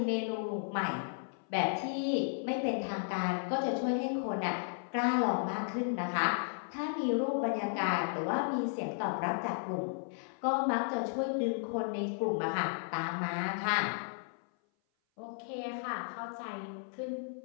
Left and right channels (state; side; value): silent; right; 55 dB below the other